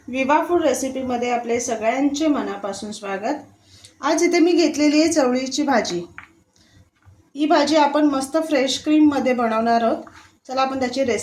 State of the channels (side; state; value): both; identical; correlation 1.00